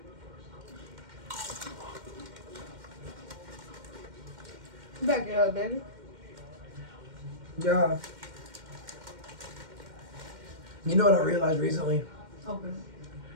Back it up, baby. Yeah. You know what I realized recently? Open.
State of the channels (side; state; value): left; late; 2.1 ms